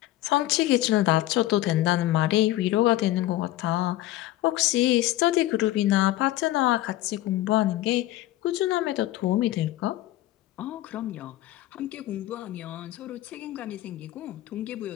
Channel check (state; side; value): quieter; right; 15.3 dB